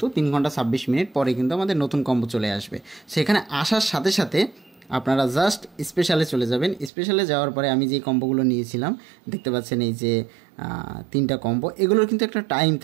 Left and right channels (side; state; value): left; drops out; at 6.9 s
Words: 3 ঘন্টা 26 মিনিট পরে কিন্তু আমাদের নতুন কম্বো চলে আসবে। সেখানে আসার সাথে সাথে আপনারা জাস্ট স্পেশালে চলে যাবেন। স্পেশালে যাওয়ার পরে আমি যে কম্বোগুলো নিয়েছিলাম, দেখতে পাচ্ছেন এই যে 3টা কম্বো, এগুলোর কিন্তু একটা টাইম